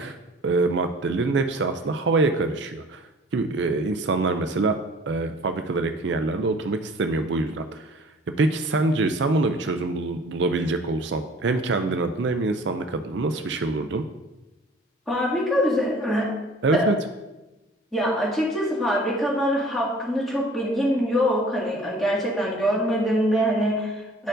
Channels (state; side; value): normal; both; correlation 0.49